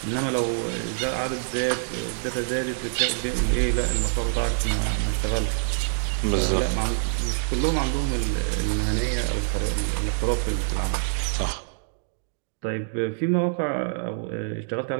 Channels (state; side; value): silent; left; digital silence